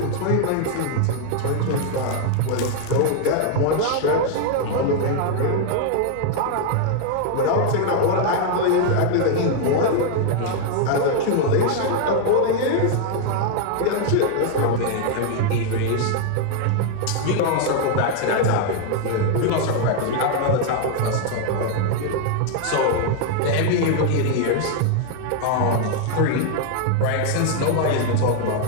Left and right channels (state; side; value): different; both; correlation 0.00